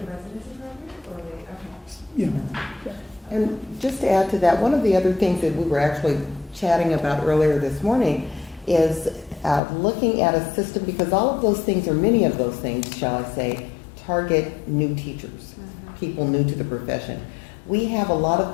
residency program, or okay? Yeah. And just to add to that, one of the other things that we were actually chatting about earlier this morning is looking at a system, because all of those things, or many of those things, shall I say, target new teachers, people new to the profession. We have a lot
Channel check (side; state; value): right; drops out; at 9.6 s